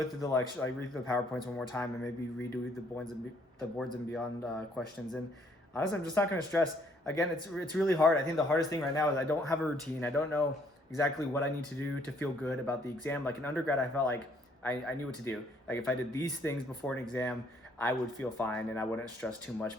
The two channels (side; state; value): both; normal; correlation 0.65